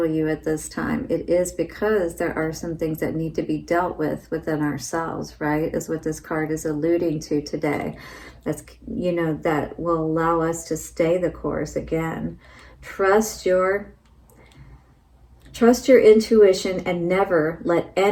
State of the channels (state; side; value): identical; both; correlation 1.00